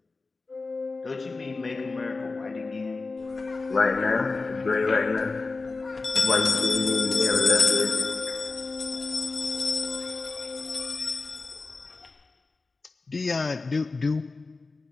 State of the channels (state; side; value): quieter; right; 3.8 dB